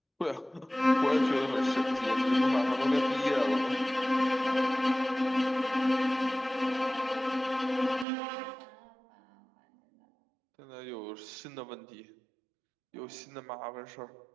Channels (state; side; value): drops out; left; at 8.1 s